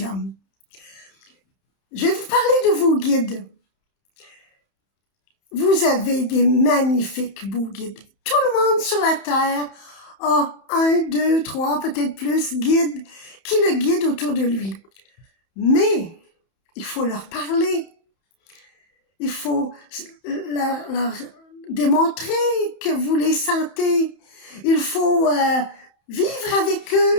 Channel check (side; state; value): right; late; 31 ms